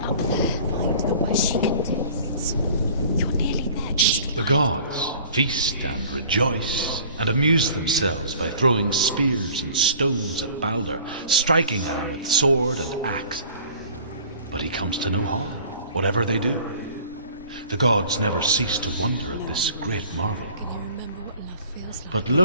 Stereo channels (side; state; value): both; inverted; correlation -0.48